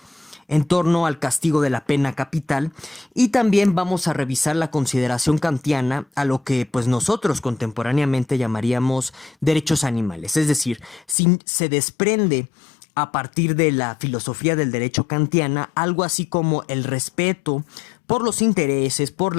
en torno al castigo de la pena capital, y también vamos a revisar la consideración kantiana a lo que pues nosotros contemporáneamente llamaríamos derechos animales, es decir, si se desprende a partir de la filosofía del derecho kantiana algo así como el respeto por los intereses, por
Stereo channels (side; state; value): right; drops out; at 11.2 s